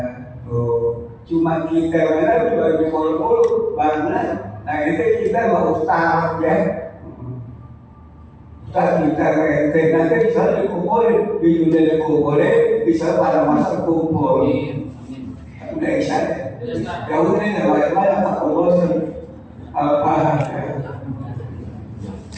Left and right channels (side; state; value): both; identical; correlation 1.00